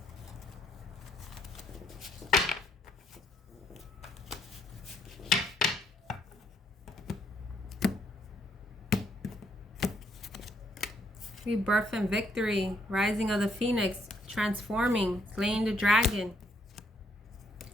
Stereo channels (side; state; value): both; normal; correlation 0.72